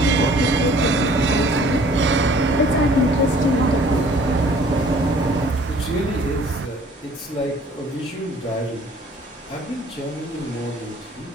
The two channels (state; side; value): normal; both; correlation 0.54